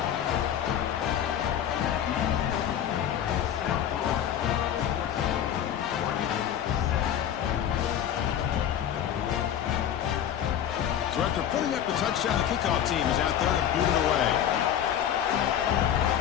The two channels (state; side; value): quieter; right; 10.0 dB